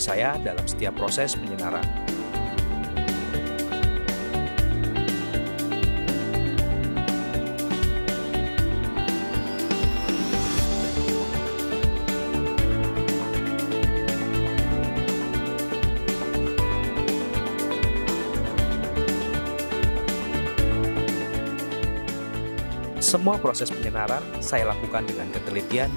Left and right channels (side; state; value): both; inverted; correlation -1.00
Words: saya dalam setiap proses penyenaran. Semua proses penyenaran saya lakukan dengan ketelitian